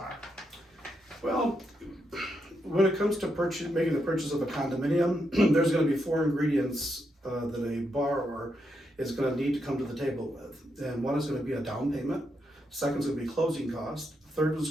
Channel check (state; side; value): normal; both; correlation 0.81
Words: Well, when it comes to making the purchase of a condominium, there's going to be four ingredients that a borrower is going to need to come to the table with. And one is going to be a down payment. Second is going to be closing costs. Third